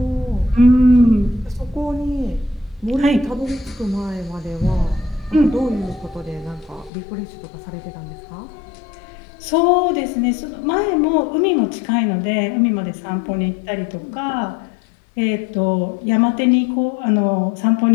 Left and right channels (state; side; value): drops out; right; at 6.9 s